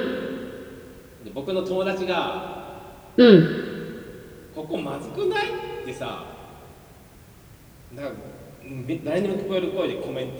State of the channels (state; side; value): identical; both; correlation 1.00